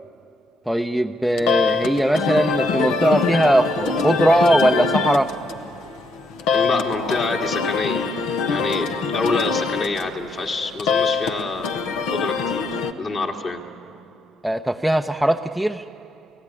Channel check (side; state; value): both; normal; correlation 0.77